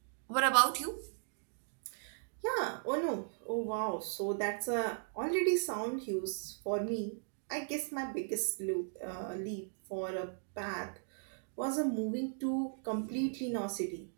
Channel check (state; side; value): silent; left; digital silence